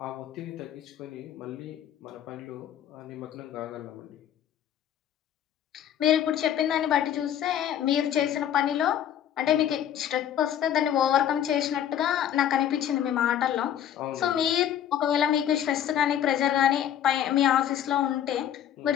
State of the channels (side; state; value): right; quieter; 10.3 dB